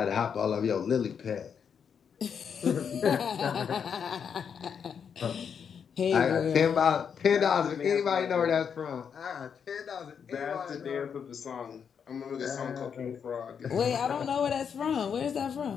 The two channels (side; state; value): right; quieter; 7.1 dB